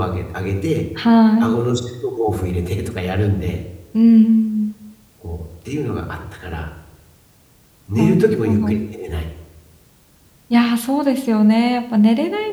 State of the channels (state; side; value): identical; both; correlation 1.00